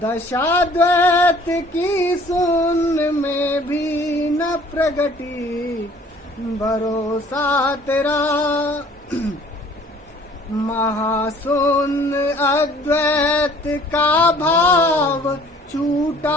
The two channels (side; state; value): both; normal; correlation 0.54